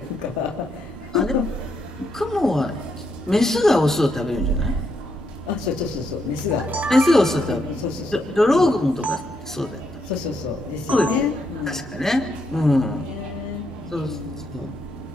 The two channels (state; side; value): normal; both; correlation 0.78